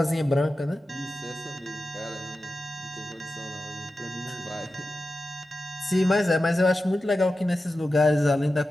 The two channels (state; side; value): normal; both; correlation 0.92